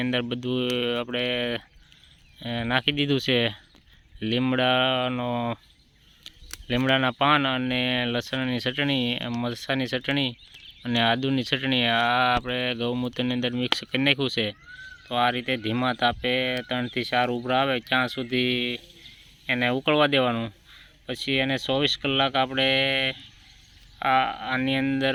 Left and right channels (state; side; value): identical; both; correlation 1.00